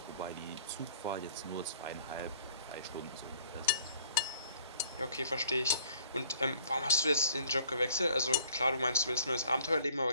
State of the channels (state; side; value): inverted; both; correlation -0.56